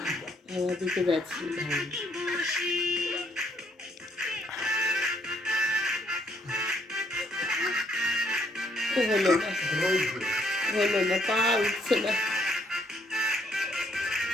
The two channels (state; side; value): normal; both; correlation 0.70